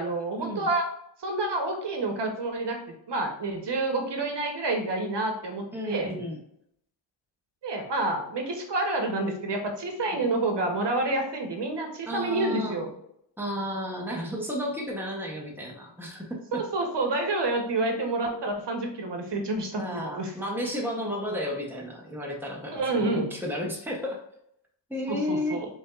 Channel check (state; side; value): normal; both; correlation 0.00